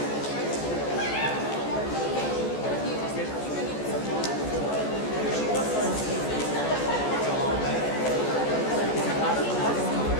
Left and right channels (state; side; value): late; right; 14 ms